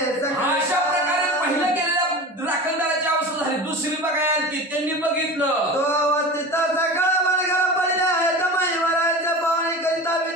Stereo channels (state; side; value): normal; both; correlation 0.32